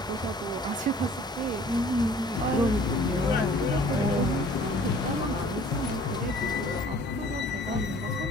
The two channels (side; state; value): both; normal; correlation 0.52